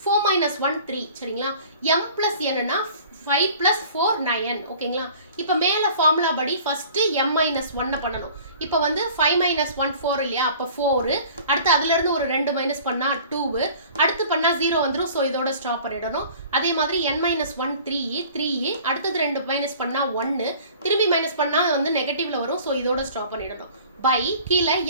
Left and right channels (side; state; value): both; inverted; correlation -0.47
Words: 4 minus 1 3, சரிங்களா? m plus n னா 5 plus 4 9, ஓகேங்களா? இப்போ மேல ஃபார்முலா படி ஃபர்ஸ்ட் m minus 1 பண்ணணும். இப்போ வந்து 5 minus 1 4 இல்லையா, அப்ப 4, அடுத்து அதுல இருந்து ஒரு 2 மைனஸ் பண்ணா 2, அடுத்து பண்ணா 0 வந்துரும். ஸோ இதோட ஸ்டாப் பண்ணிடணும். அதே மாதிரி n minus 1 3, அடுத்தது 2 மைனஸ் பண்ணா 1, திரும்பி மைனஸ் பண்ணா வந்து நெகட்டிவ்ல வரும். ஸோ இதோட ஸ்டாப் பண்ணிடணும். பை கீழே